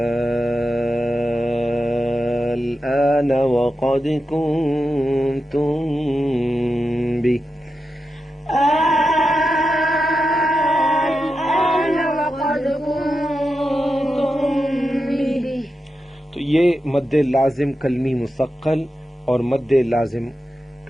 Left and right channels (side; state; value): both; normal; correlation 0.89